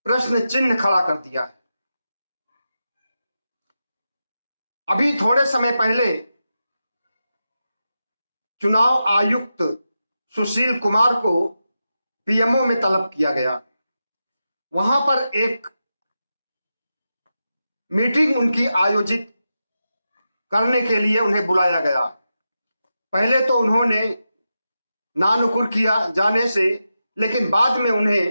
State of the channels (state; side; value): inverted; both; correlation -0.89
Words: प्रश्न चिन्ह खड़ा कर दिया है। अभी थोड़े समय पहले चुनाव आयुक्त सुशील कुमार को पीएमओ में तलब किया गया। वहां पर एक मीटिंग उनकी आयोजित करने के लिए उन्हें बुलाया गया। पहले तो उन्होंने नानुकुर किया जाने से, लेकिन बाद में